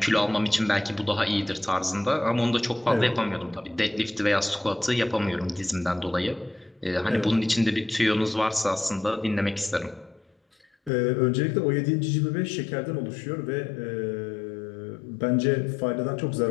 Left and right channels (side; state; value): right; drops out; at 10.9 s